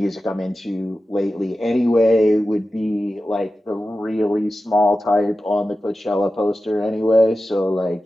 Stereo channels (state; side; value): normal; both; correlation 0.93